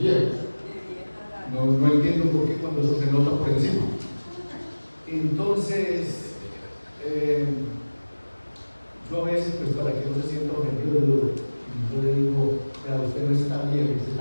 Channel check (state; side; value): inverted; both; correlation -1.00